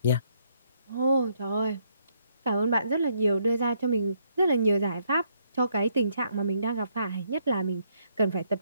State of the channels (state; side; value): inverted; both; correlation -0.72